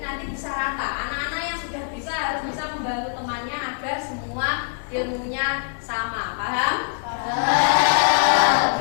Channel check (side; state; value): right; silent; 63 dB below the other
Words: nanti bisa rata. Anak-anak yang sudah bisa harus bisa membantu temannya agar semua ilmunya sama. Paham?